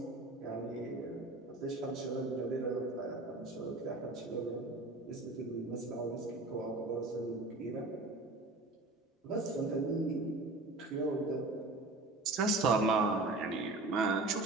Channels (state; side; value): quieter; left; 3.0 dB